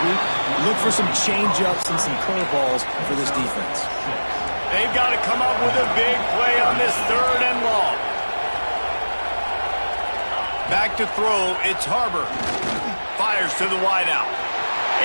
week. Look for some change-ups and some curveballs for this defense. They've got to come up with a big play on this 3rd and long. Back to throw, it's Harbor. Fires to the wideout.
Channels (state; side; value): inverted; both; correlation -1.00